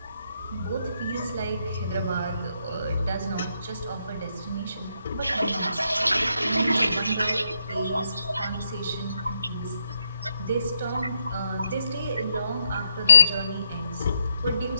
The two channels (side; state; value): both; inverted; correlation -0.77